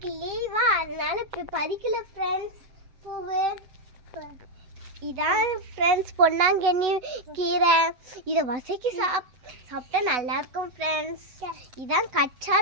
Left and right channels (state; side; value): late; left; 7.7 ms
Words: லீவா, அதனால இப்ப பறிக்கல ஃப்ரெண்ட்ஸ் பூவு. இதான் ஃப்ரெண்ட்ஸ் பொன்னாங்கண்ணி கீரை. இதை வசக்கி சாப்பிட்டா நல்லா இருக்கும் ஃப்ரெண்ட்ஸ். இதான்